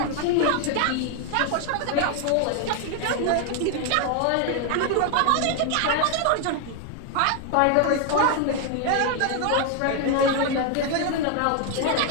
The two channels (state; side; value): different; both; correlation 0.01